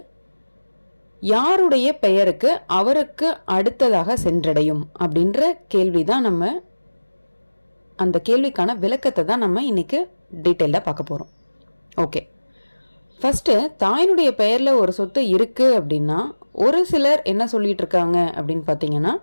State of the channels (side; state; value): both; inverted; correlation -1.00